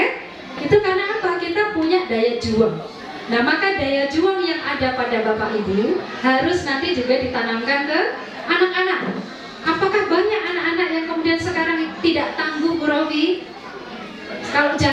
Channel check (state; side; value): identical; both; correlation 1.00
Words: Itu karena apa? Kita punya daya juang. Nah maka daya juang yang ada pada Bapak Ibu harus nanti juga ditanamkan ke anak-anak. Apakah banyak anak-anak yang kemudian sekarang tidak tangguh, Bu Rofi? Kalau